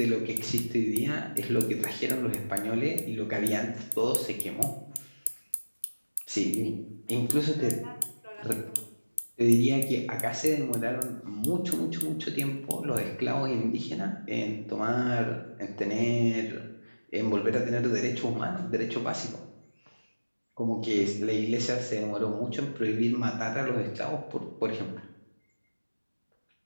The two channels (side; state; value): both; inverted; correlation -1.00